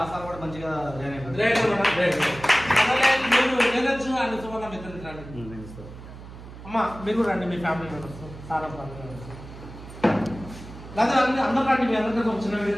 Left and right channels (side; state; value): right; noise; hum, 15 dB below the sound